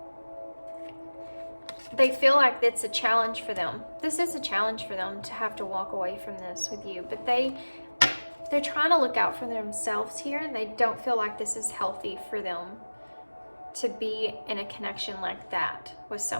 They feel like it's a challenge for them. This is a challenge for them to have to walk away from this with you, but they're trying to look out for themselves here, and they don't feel like this is healthy for them to be in a connection like that with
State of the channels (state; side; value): inverted; both; correlation -1.00